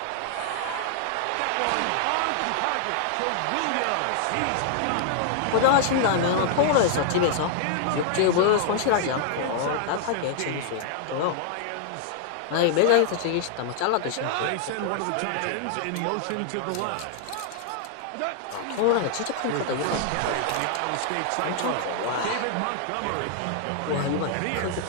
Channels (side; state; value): both; different; correlation 0.00